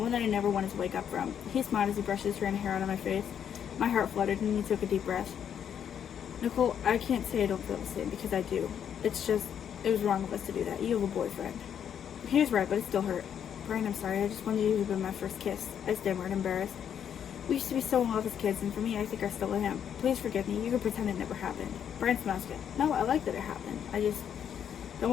that I never wanted to wake up from. He smiled as he brushed his hair out of my face. My heart fluttered, and he took a deep breath. Nicole, I can't say I don't feel the same, because I do. It's just, it was wrong of us to do that. You have a boyfriend. He was right, but it still hurt. Brian, I'm sorry. I just wanted you to be my first kiss. I stammered, embarrassed. We used to be so in love as kids, and for me, I think I still am. Please forgive me. You can pretend it never happened. Brian smiled again. No, I like that it happened. I just don't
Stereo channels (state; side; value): quieter; right; 8.7 dB